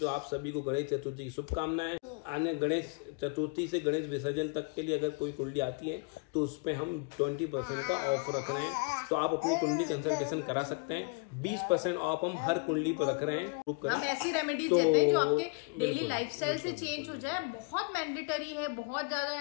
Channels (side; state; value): right; quieter; 31.2 dB